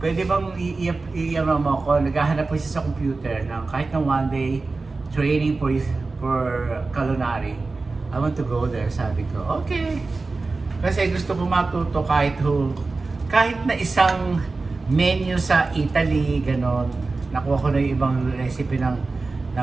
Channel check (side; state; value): left; quieter; 3.7 dB